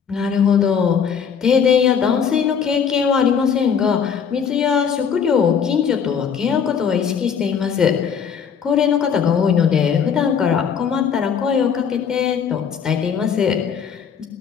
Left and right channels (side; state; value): right; quieter; 7.1 dB